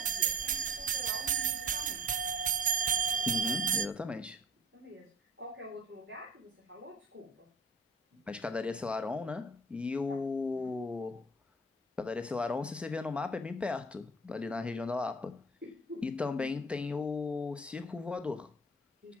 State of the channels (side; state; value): both; normal; correlation 0.42